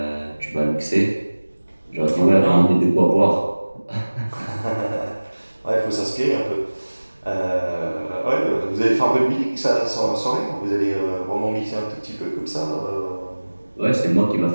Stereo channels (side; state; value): both; inverted; correlation -1.00